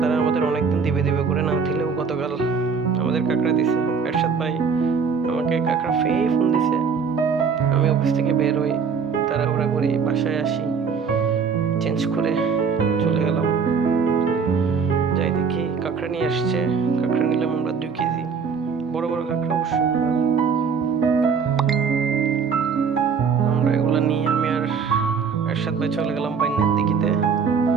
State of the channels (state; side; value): quieter; left; 5.9 dB